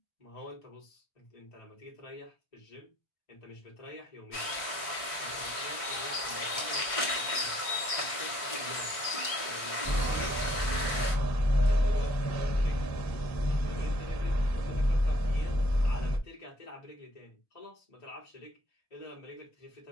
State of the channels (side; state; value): right; late; 1.6 ms